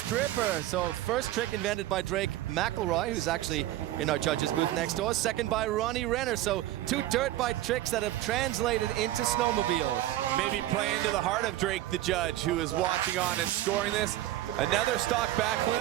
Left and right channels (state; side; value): quieter; left; 14.7 dB